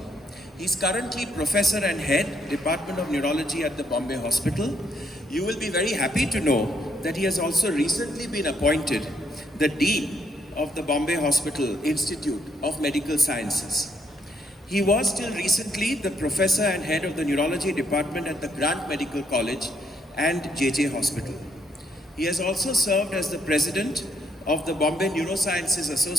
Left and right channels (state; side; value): normal; both; correlation 0.72